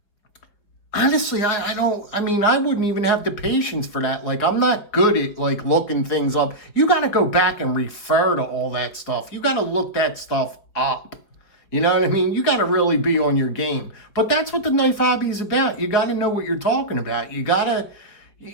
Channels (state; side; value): late; right; 5.1 ms